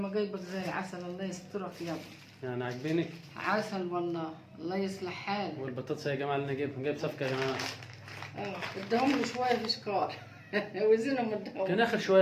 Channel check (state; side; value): identical; both; correlation 1.00